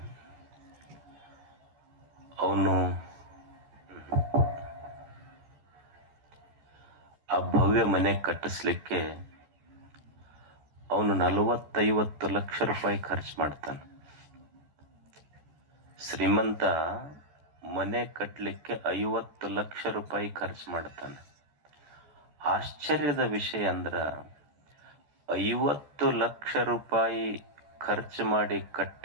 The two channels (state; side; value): late; left; 14 ms